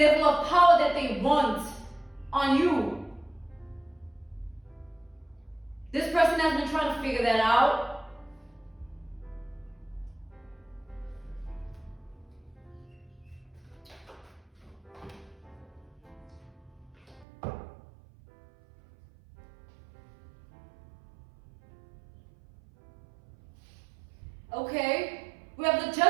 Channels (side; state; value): left; drops out; at 17.2 s